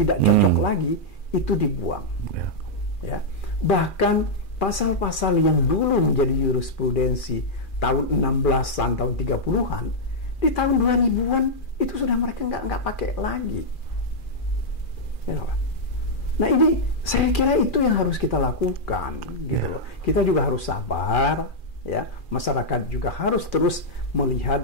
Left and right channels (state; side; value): late; right; 2.4 ms